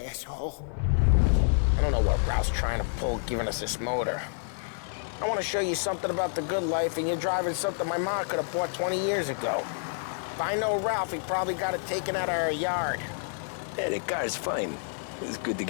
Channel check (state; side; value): silent; right; digital silence